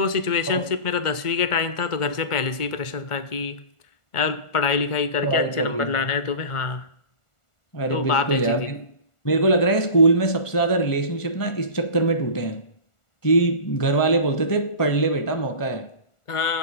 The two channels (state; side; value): late; right; 1.4 ms